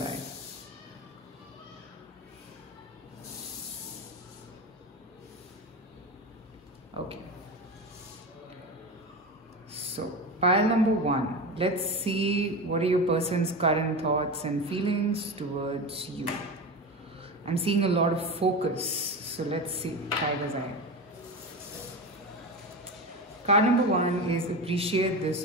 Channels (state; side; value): normal; both; correlation 0.24